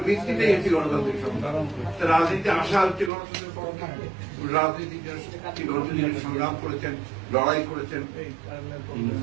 ভিত্তিতেই হচ্ছে গণতান্ত্রিক সংগ্রাম। তার রাজনীতি আসা হচ্ছে গণতন্ত্রের পক্ষে, রাজনীতির জন্য সংগ্রাম করেছেন, লড়াই করেছেন,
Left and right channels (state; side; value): drops out; left; at 3.1 s